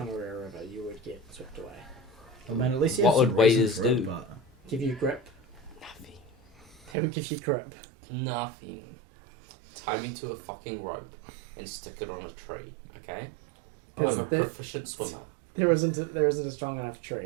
River, you would get swept away. Well, man, at least What would waders do? Give you grip. Nothing. They would give you grip. Nothing. Tie me to a fucking rope and stick it on a tree, okay? I'm a proficient swimmer. There isn't a strong enough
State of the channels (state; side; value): drops out; left; at 7.0 s